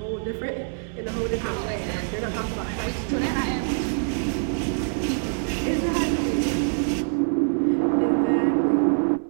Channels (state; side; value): silent; left; 62 dB below the other